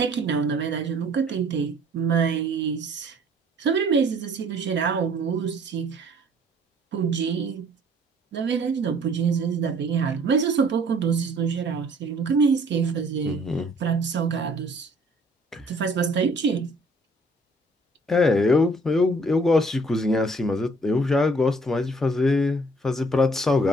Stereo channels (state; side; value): normal; both; correlation 0.57